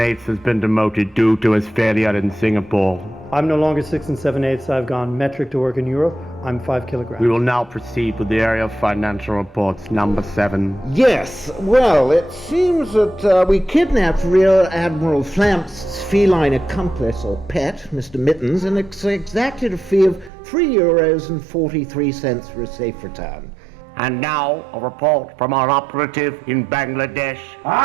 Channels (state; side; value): drops out; left; at 20.3 s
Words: has been demoted due to his failure in Singapore. I'm no longer 6 7/8. I've gone metric to work in Europe. I'm 5 kilograms. We will now proceed with the area of financial reports, number 7. Yes, well, it seems that we kidnapped Rear Admiral Flamp's feline accomplice, or pet, Mr. Mittens, and exacted a fee of €3.43 for a safe return. And now, a report from our operative in Bangladesh.